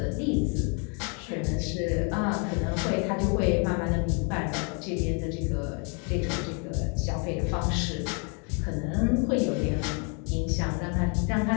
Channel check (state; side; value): quieter; right; 36.7 dB